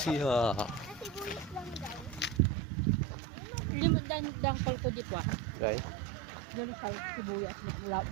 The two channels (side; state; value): left; drops out; at 2.4 s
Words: Dangkal ko di pa. Guys, Dali sa sibuyas na